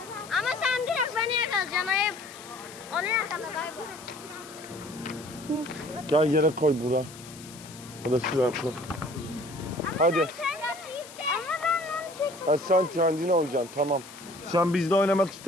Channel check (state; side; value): noise; left; hiss, 17 dB below the sound